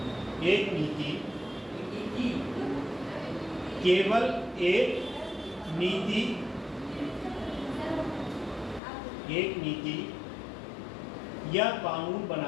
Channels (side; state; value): right; drops out; at 8.8 s